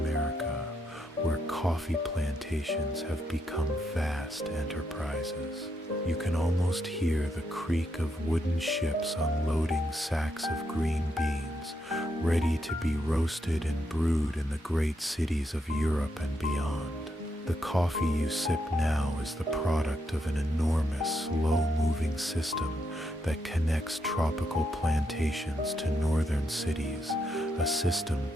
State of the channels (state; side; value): normal; both; correlation 0.79